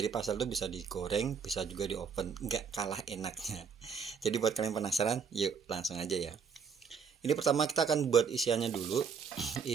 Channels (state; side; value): quieter; left; 6.3 dB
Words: pastel tuh bisa digoreng, bisa juga di oven. Nggak kalah enaknya. Jadi buat kalian penasaran, yuk langsung aja ya. Ini pertama kita akan buat isiannya dulu.